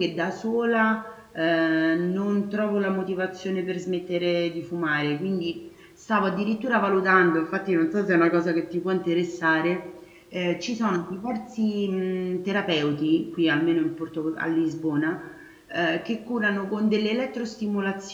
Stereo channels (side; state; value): both; identical; correlation 1.00